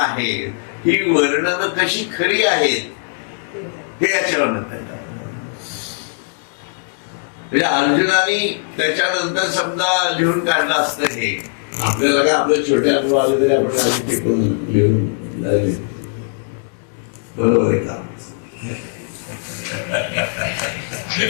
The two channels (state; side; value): silent; right; digital silence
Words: ही वर्णनं कशी खरी आहेत हे याच्यावर कळतात. म्हणजे अर्जुनाने त्याच्यानंतर समजा लिहून काढलं असतं हे, आपल्याला काय आपल्या छोट्या अनुभव आले तरी आपण आधी टिकून लिहून झाले. बरोबर आहे का?